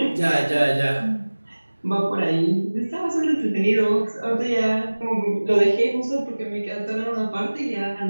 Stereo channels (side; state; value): both; inverted; correlation -1.00